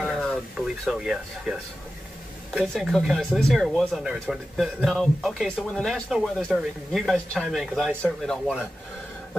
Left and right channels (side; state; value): both; normal; correlation 0.93